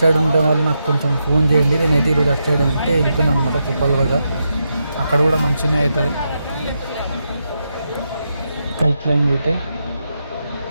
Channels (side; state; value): both; inverted; correlation -0.85